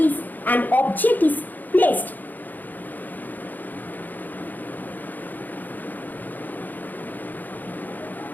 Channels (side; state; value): right; late; 0.085 ms